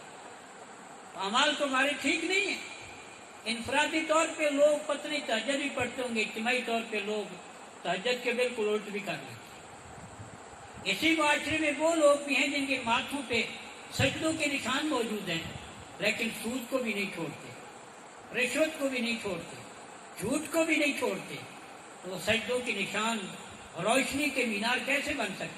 اعمال تمہارے ٹھیک نہیں ہیں۔ انفرادی طور پہ لوگ پتنی تہجد بھی پڑھتے ہوں گے، اجتماعی طور پہ لوگ تہجد کے بالکل الٹ بھی کر لیتے ہیں۔ اسی معاشرے میں وہ لوگ بھی ہیں جن کے ماتھوں پہ سجدوں کے نشان موجود ہیں، لیکن سود کو بھی نہیں چھوڑتے، رشوت کو بھی نہیں چھوڑتے، جھوٹ کو بھی نہیں چھوڑتے، تو وہ سجدوں کے نشان روشنی کے مینار کیسے بن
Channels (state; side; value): identical; both; correlation 1.00